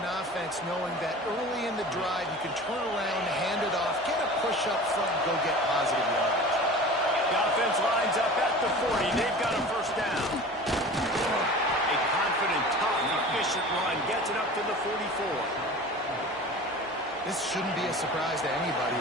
offense knowing that early in the drive you can turn around, hand it off, get a push up front, and go get positive yardage. The offense lines up at the 40. They've got a 1st down. A confident, tough, efficient run gets it up to the 44. This shouldn't be a surprise to anybody.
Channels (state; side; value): normal; both; correlation 0.38